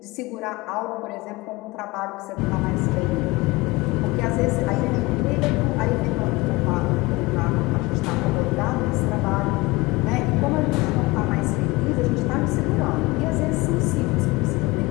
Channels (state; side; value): quieter; right; 22.5 dB